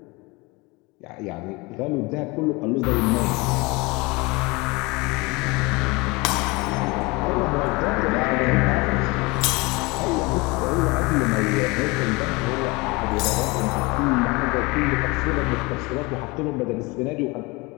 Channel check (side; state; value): right; quieter; 25.3 dB